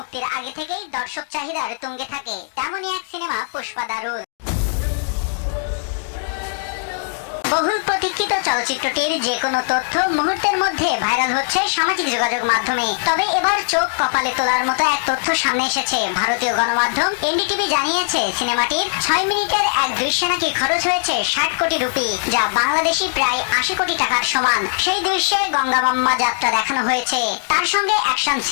আগে থেকেই দর্শক চাহিদার তুঙ্গে থাকে। তেমনই এক সিনেমা পুষ্পা দ্য রুল। বহুল প্রতীক্ষিত চলচ্চিত্রটির যে কোনো তথ্য মুহূর্তের মধ্যে ভাইরাল হচ্ছে সামাজিক যোগাযোগ মাধ্যমে। তবে এবার চোখ কপালে তোলার মতো এক তথ্য সামনে এসেছে। ভারতীয় গণমাধ্যম এনডিটিভি জানিয়েছে, সিনেমাটির 6 মিনিটের এক দৃশ্যে নাকি খরচ হয়েছে 60 কোটি রুপি, যা বাংলাদেশি প্রায় 80 কোটি টাকার সমান। সেই দৃশ্যে গঙ্গামাম্মা যাত্রা দেখানো হয়েছে, তার সঙ্গে অ্যাকশন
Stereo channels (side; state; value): right; silent; digital silence